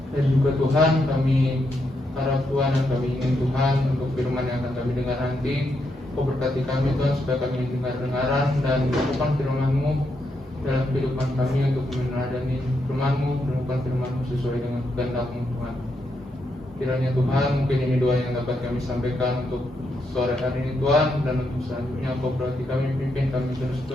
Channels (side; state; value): both; normal; correlation 0.81